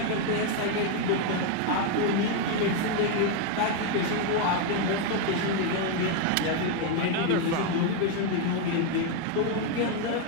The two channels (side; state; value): both; different; correlation 0.01